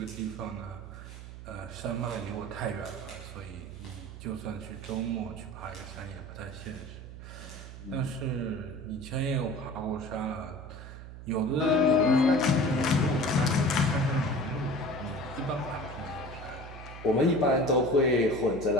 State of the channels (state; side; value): noise; right; hum, 12 dB below the sound